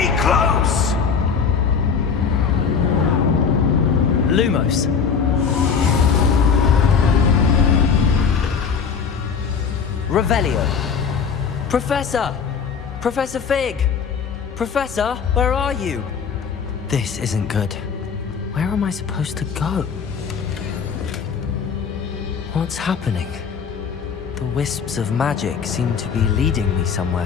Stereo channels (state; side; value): quieter; right; 6.2 dB